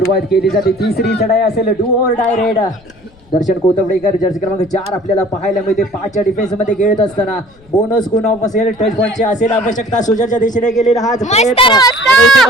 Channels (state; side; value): noise; left; rumble, 28 dB below the sound